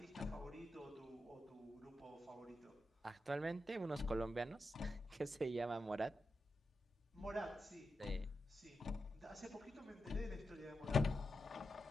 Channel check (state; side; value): normal; both; correlation 0.88